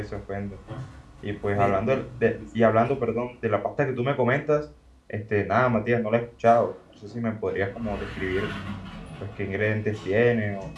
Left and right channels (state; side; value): identical; both; correlation 1.00